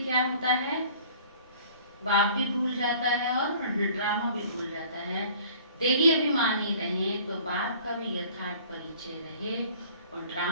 क्या होता है, बाप भी भूल जाता है और ड्रामा भी भूल जाता है। देही अभिमानी रहे तो बाप का भी यथार्थ परिचय रहे और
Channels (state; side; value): inverted; both; correlation -0.50